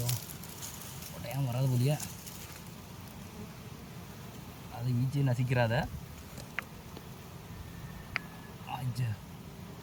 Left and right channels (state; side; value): identical; both; correlation 1.00